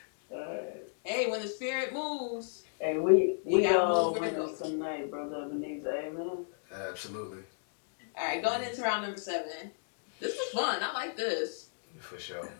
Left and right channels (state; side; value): silent; right; digital silence